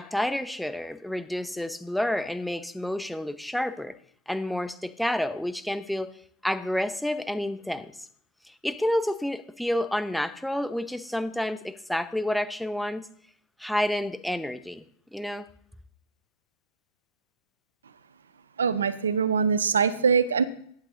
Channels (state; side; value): normal; both; correlation 0.33